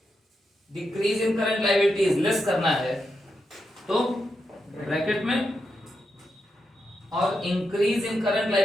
Decrease in current liabilities less करना है, तो ब्रैकेट में। और increase in current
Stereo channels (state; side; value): normal; both; correlation 0.85